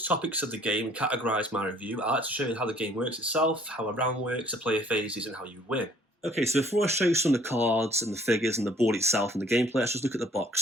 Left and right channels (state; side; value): normal; both; correlation 0.58